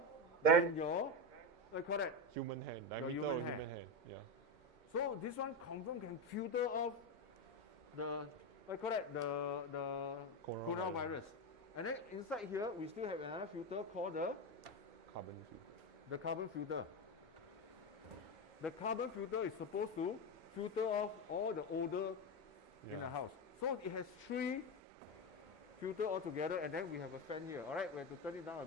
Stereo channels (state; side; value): late; left; 2.1 ms